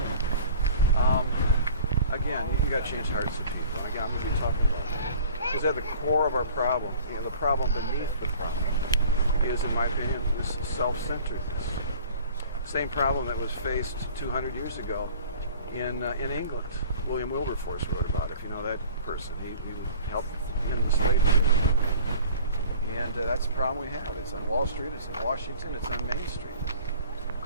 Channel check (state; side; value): inverted; both; correlation -0.46